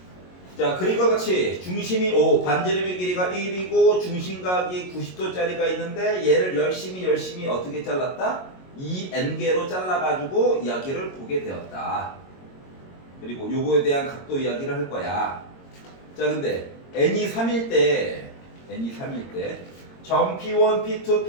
자, 그림과 같이 중심이 5, 반지름의 길이가 1이고 중심각이 90도짜리가 있는데 얘를 열심히 어떻게 잘랐다? 2n개로 잘라가지고 이야기를 보게 되었다. 그리고 요거에 대한 각도 이야기를 할 거야. 자, 근데 n이 3일 때 점 P1, P2,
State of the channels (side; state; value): right; late; 22 ms